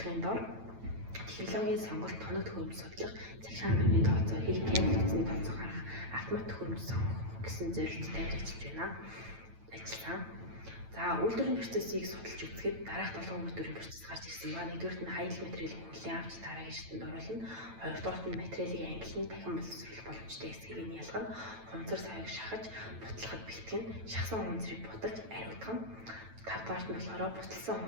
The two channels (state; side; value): late; left; 9.0 ms